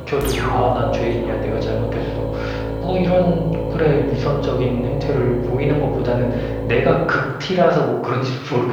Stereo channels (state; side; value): identical; both; correlation 1.00